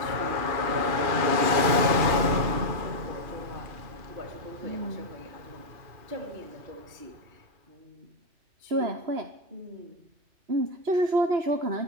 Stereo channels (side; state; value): left; late; 2.5 ms